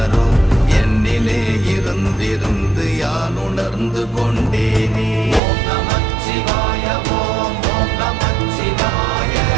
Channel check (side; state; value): left; drops out; at 5.4 s